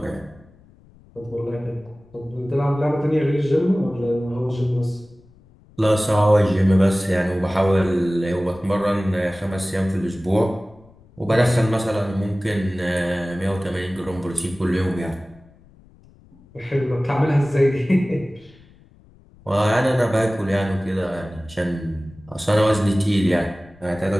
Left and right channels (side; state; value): left; noise; rumble, 27 dB below the sound